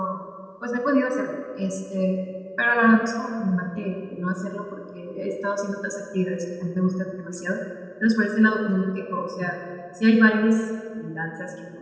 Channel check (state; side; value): identical; both; correlation 1.00